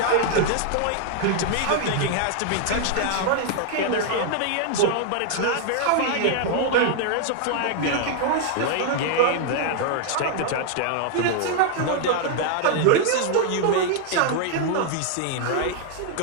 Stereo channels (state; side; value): different; both; correlation 0.00